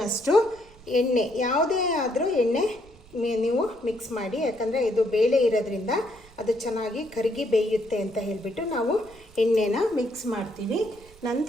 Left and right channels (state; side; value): noise; right; rumble, 24 dB below the sound